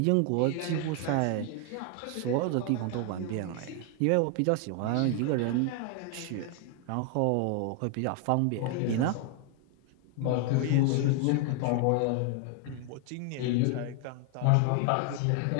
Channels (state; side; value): different; both; correlation 0.00